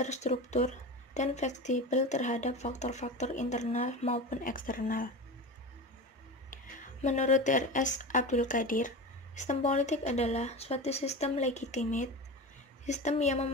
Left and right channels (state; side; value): normal; both; correlation 0.27